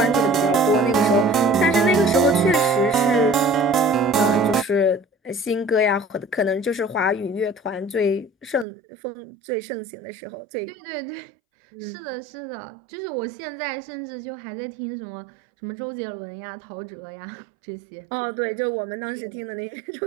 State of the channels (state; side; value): drops out; left; at 8.7 s